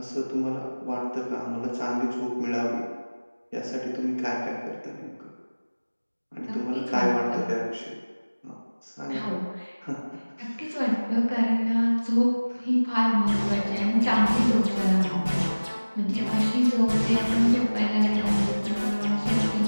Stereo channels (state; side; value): inverted; both; correlation -1.00